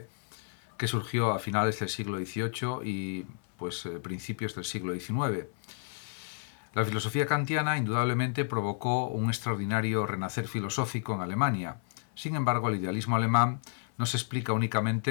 que surgió a finales del siglo XVIII y principios del siglo XIX. La filosofía kantiana indudablemente provocó un extraordinario renacer filosófico en Alemania. Sin embargo, el idealismo alemán no se explica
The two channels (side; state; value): right; silent; 57 dB below the other